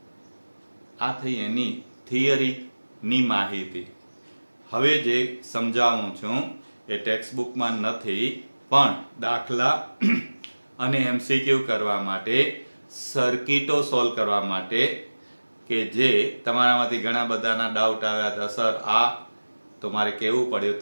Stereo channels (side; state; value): both; inverted; correlation -1.00